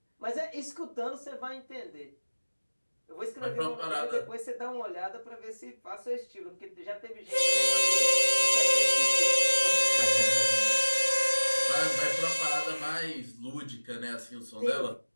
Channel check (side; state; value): both; inverted; correlation -1.00